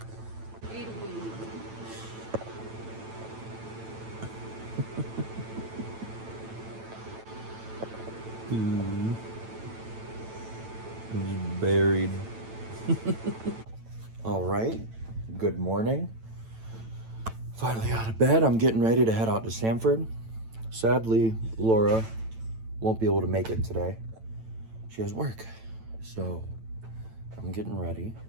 He's buried. All right. Good morning. Finally out of bed. I'm getting ready to head out to Sanford. Sadly, Laura won't be able to make it today. She has work. So I'm getting ready.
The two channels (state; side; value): late; left; 9.0 ms